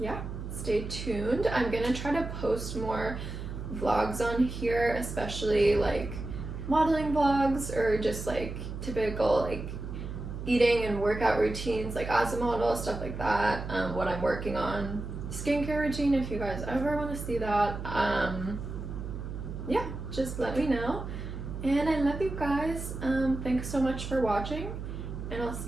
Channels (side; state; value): right; noise; hum, 7 dB below the sound